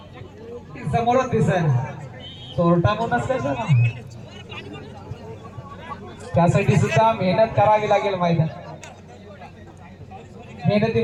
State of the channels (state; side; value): identical; both; correlation 1.00